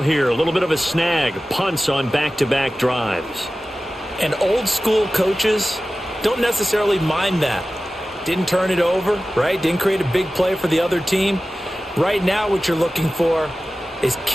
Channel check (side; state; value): both; normal; correlation 0.96